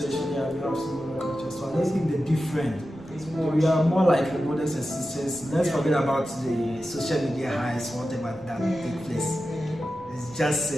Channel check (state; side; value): noise; left; rumble, 24 dB below the sound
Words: true. we have similar cultures. So I don't think they're different. It's more. We are more like brothers and sisters. Let's forget about the social media highs, whatever that take place. It's just